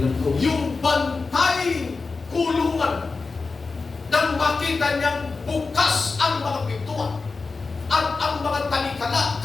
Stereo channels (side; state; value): right; quieter; 4.1 dB